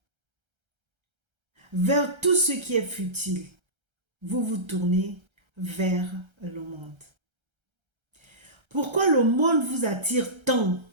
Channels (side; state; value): left; late; 1.3 ms